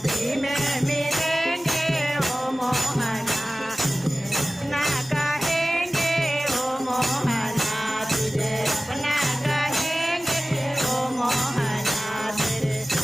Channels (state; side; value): normal; both; correlation 0.97